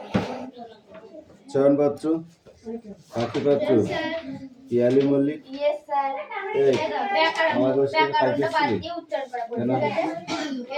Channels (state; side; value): identical; both; correlation 1.00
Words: চয়ন পাত্র, পাখি পাত্র, পিয়ালি মল্লিক, আমার